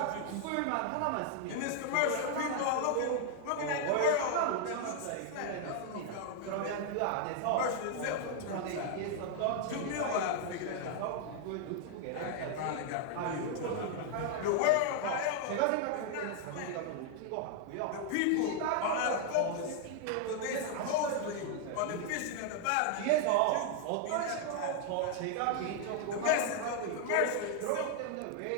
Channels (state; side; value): different; both; correlation 0.00